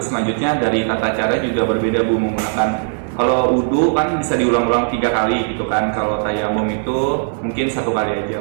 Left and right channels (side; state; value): left; silent; 63 dB below the other